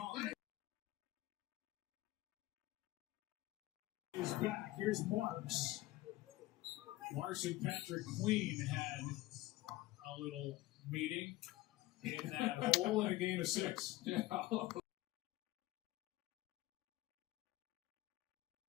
Is back. Here's Marks. Marks and Patrick Queen had a little meeting in that hole in a game of 6. Yeah.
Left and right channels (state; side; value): quieter; right; 17.4 dB